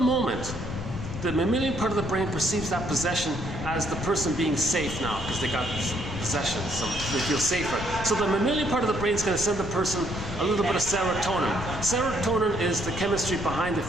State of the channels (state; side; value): noise; left; rumble, 8 dB below the sound